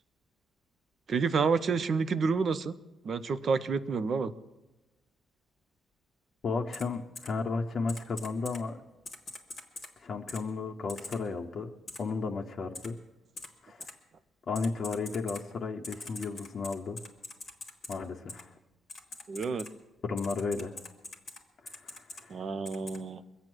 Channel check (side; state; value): both; normal; correlation 0.78